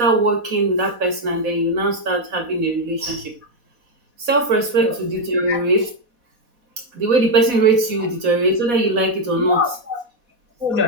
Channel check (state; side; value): late; left; 4.1 ms